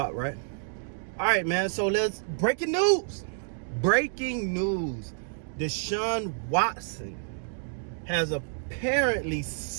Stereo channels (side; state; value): left; silent; digital silence